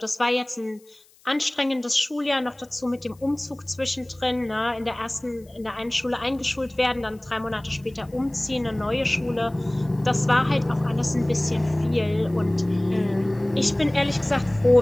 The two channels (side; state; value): left; noise; hiss, 30 dB below the sound